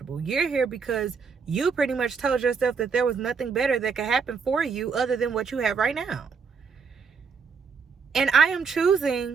You're here because you pretty much told yourself that there was nothing better that could happen for you other than what you have right now. And I am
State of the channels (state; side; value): quieter; left; 5.6 dB